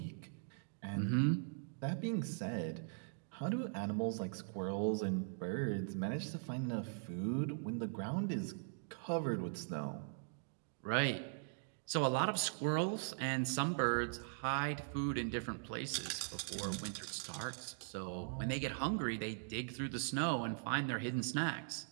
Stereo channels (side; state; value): left; silent; digital silence